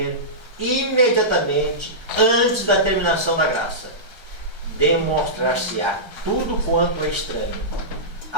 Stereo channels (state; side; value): late; left; 1.3 ms